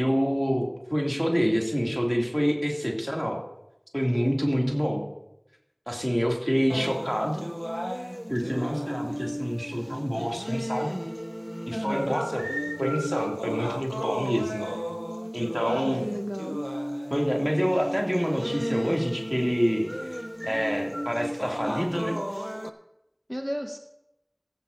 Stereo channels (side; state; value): both; identical; correlation 1.00